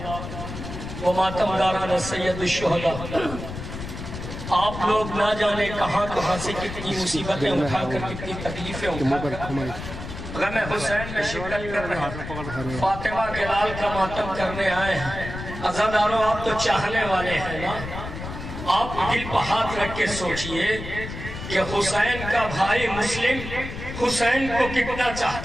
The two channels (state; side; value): noise; left; rumble, 9 dB below the sound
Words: و ماتمداران سید الشہداء، آپ لوگ نہ جانے کہاں کہاں سے کتنی مصیبتیں اٹھا کر کتنی تکلیفیں اٹھا کر غم حسین میں شرکت کر رہے ہیں، فاطمہ کے لال کا ماتم کرنے آئے ہیں۔ عزاداروں، آپ تو چاہنے والے ہیں نا، آپ دل پہ ہاتھ رکھ کے سوچئے کہ حسین کا بھائی مسلم حسین کو کتنا